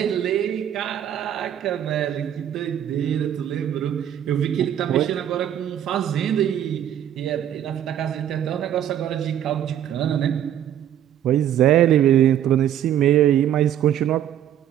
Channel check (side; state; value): left; quieter; 10.6 dB